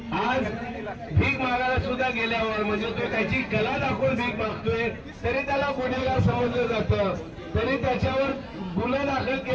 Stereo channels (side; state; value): both; identical; correlation 1.00